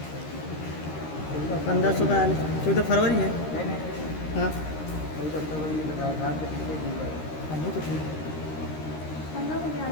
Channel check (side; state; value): right; late; 13 ms